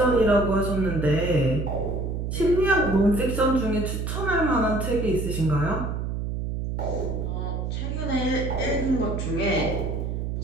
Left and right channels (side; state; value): right; noise; hum, 3 dB below the sound